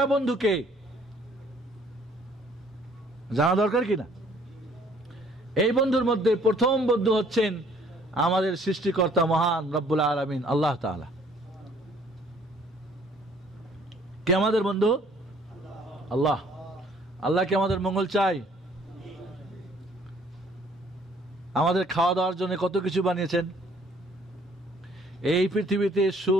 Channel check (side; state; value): both; normal; correlation 0.59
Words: বন্ধুকে জানা দরকার কিনা? এই বন্ধুর মধ্যে প্রথম বন্ধু হচ্ছেন আমাদের সৃষ্টিকর্তা মহান রব্বুল আলামিন আল্লাহ তাআলা। কে আমাদের বন্ধু? আল্লাহ। আল্লাহ কি আমাদের মঙ্গল চাই? আমাদের খাওয়া দাওয়ার জন্য কত কিছু বানিয়েছেন। এই পৃথিবীতে